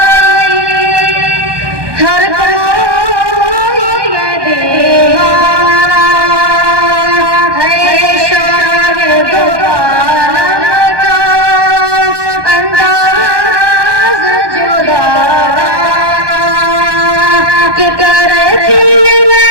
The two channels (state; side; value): late; left; 1.2 ms